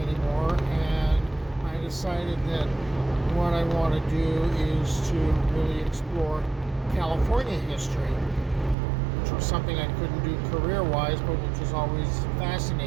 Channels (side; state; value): left; drops out; at 8.8 s